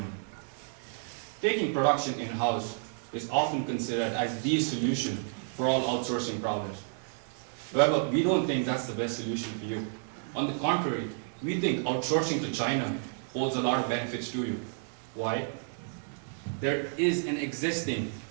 Taking production in-house is often considered as the solution for all outsourcing problems. However, we don't think that's the best solution for you. On the contrary, we think outsourcing to China holds a lot of benefits to you. Why? There is an existing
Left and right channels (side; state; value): left; silent; 57 dB below the other